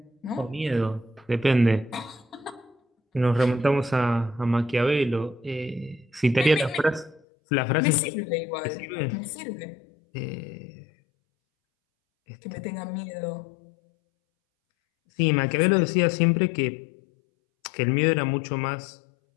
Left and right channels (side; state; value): right; drops out; at 7.2 s